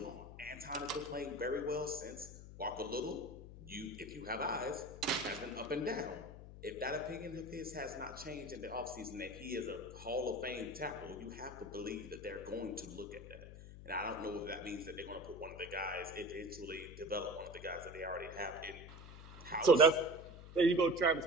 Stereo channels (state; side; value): noise; left; hum, 14 dB below the sound